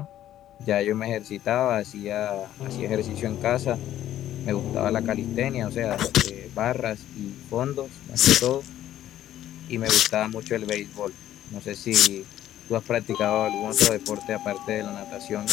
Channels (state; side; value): quieter; right; 12.4 dB